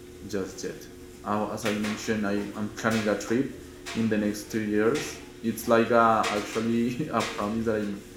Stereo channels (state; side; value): identical; both; correlation 1.00